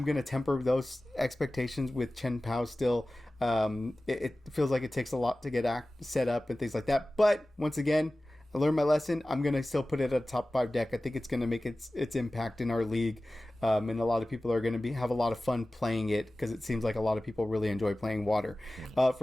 going to temper those expectations with Chen Pao still. It feels like it takes a lot to get set up and things like that. But once again, I learned my lesson. I'm going to still put it at a top 5 deck. I think it's going to make its impact in our league. And a lot of people are going to have a lot of fun playing it, because it seems like a lot of people really enjoy playing water.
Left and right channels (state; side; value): normal; both; correlation 0.97